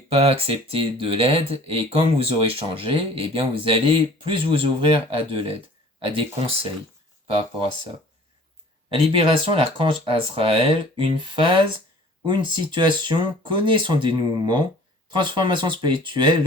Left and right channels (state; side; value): normal; both; correlation 0.49